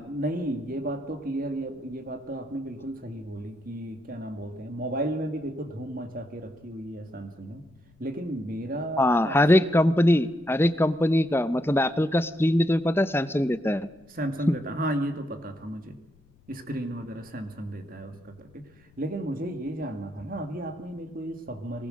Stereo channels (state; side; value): noise; left; rumble, 30 dB below the sound